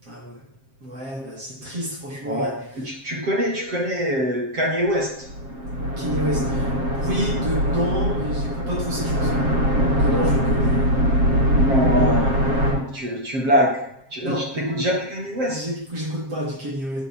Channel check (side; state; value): left; late; 7.5 ms